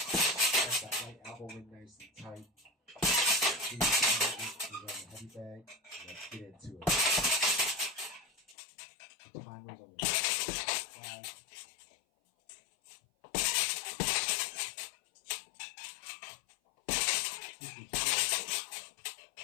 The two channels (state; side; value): drops out; right; at 8.6 s